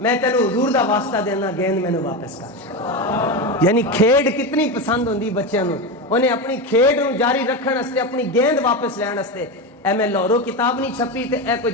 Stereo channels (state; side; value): normal; both; correlation 0.17